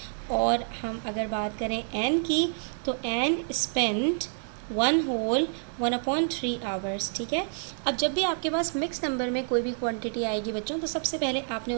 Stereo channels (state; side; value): silent; left; 59 dB below the other